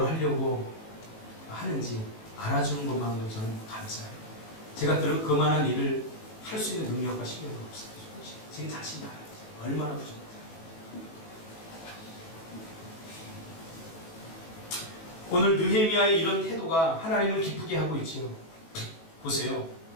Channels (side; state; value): right; late; 18 ms